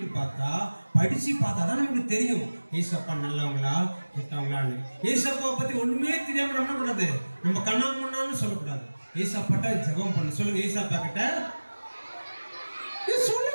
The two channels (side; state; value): both; inverted; correlation -1.00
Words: பார்த்தா, படிச்சு பார்த்தா தான் நமக்கு தெரியும் ஏசப்பா நல்லவங்களா கெட்டவங்களான்னு. ஏசப்பாவை பத்தி ஒண்ணுமே தெரியாம நம்ம என்ன கூடாது, நம்ம கண்ணாமண்ணான்னு சொல்லக்கூடாது. ஏசப்பாட்ட ஜெபம் பண்ணு. சொல்லுங்க, ஏசப்பா கிட்ட